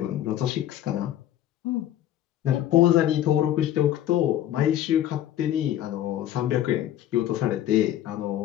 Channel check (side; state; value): right; quieter; 12.1 dB